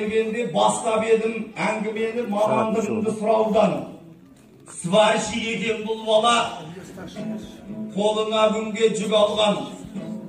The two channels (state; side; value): identical; both; correlation 1.00